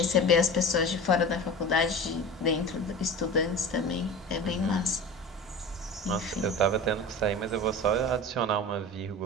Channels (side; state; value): both; normal; correlation 0.33